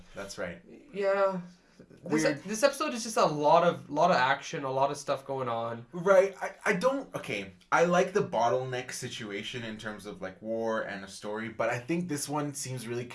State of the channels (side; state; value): both; identical; correlation 1.00